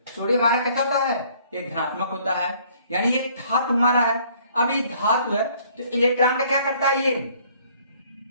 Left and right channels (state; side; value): inverted; both; correlation -0.59